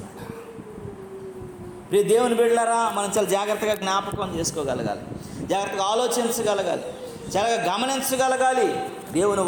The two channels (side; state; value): both; identical; correlation 1.00